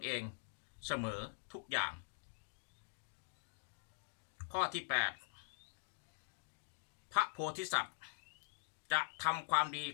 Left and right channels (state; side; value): silent; right; digital silence